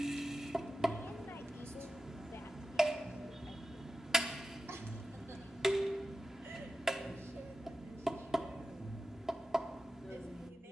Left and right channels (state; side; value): normal; both; correlation 0.92